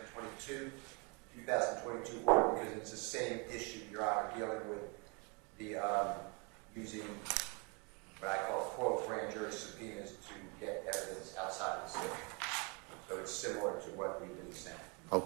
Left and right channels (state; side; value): quieter; left; 32.1 dB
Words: 22, 2022 order, because it's the same issue, Your Honor, dealing with the using what I call quote grand jury subpoenas to get evidence outside of the state. So it's similar to what we've been saying.